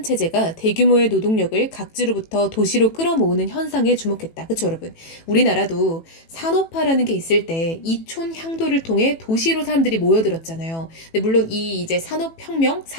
대규모의 노동력을 각지로부터 도시로 끌어모으는 현상에 주목했다. 그쵸, 여러분? 우리나라도 산업화라는 게 있을 때 이촌 향도를 통해 도시로 사람들이 모여들었잖아요. 근데 물론 이 이제 산업혁명,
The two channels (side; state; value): right; late; 18 ms